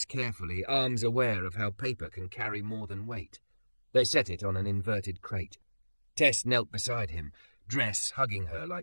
carefully, arms aware of how paper can carry more than weight. They set it on an inverted crate. Tess knelt beside him, dress hugging her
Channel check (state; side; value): inverted; both; correlation -1.00